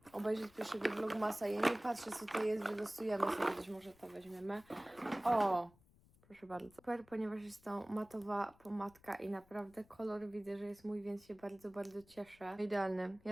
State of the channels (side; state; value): left; noise; rumble, 28 dB below the sound